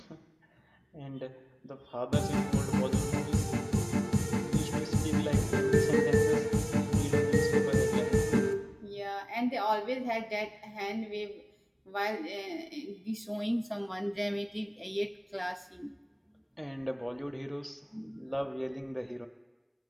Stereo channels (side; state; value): both; identical; correlation 1.00